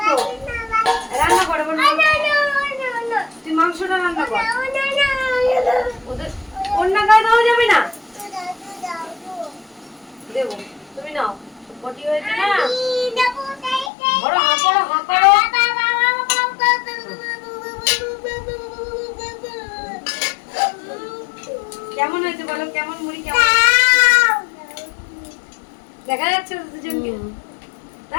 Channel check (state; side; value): drops out; right; at 13.9 s